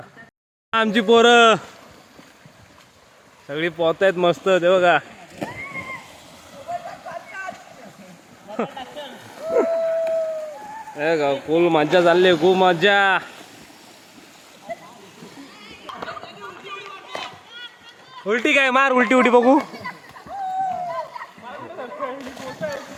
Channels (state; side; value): identical; both; correlation 1.00